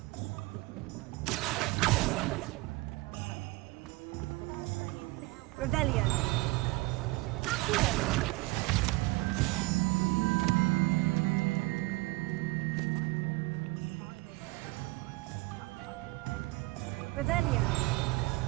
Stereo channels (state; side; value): quieter; left; 22.3 dB